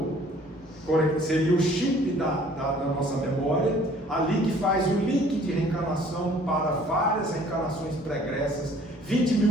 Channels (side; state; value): both; normal; correlation 0.55